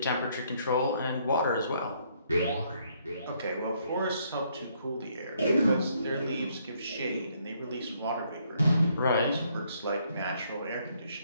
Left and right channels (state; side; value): inverted; both; correlation -0.69